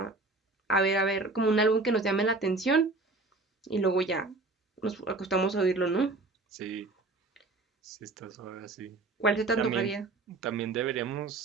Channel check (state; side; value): quieter; left; 3.3 dB